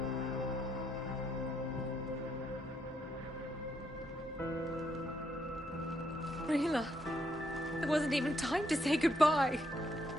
Rila, there wasn't even time to say goodbye.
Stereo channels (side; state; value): both; normal; correlation 0.76